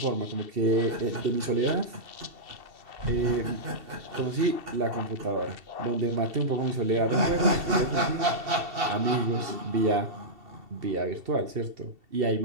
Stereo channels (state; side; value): late; left; 2.7 ms